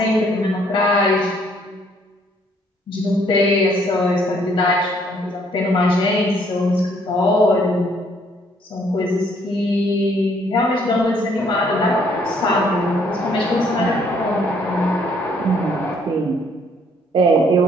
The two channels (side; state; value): both; normal; correlation 0.65